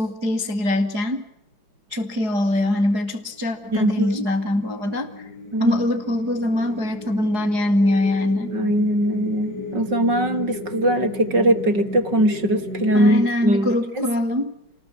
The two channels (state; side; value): late; left; 4.8 ms